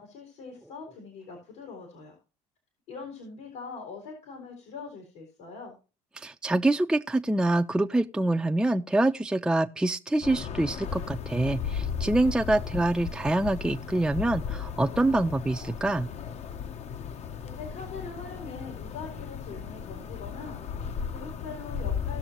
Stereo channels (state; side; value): normal; both; correlation 0.86